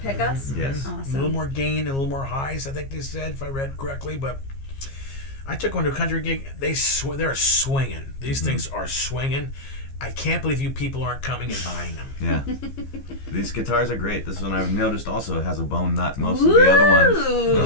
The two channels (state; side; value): late; right; 15 ms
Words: Yes. A Awesome. little more gain and a little more highs, I think they said, if I read correctly. But I took one to a country gig. They're swinging. These things are swinging. I can't believe you people aren't coming and buying them. Yeah. These guitars are great. This one I've noticed also has a bone nut. Most of the other ones,